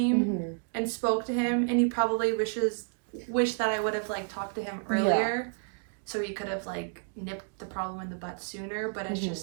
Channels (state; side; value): silent; left; 58 dB below the other